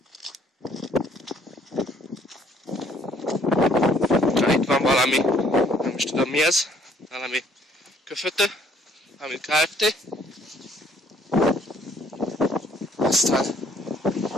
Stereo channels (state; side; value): normal; both; correlation 0.62